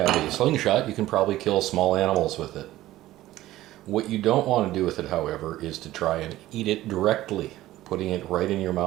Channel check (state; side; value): quieter; left; 15.5 dB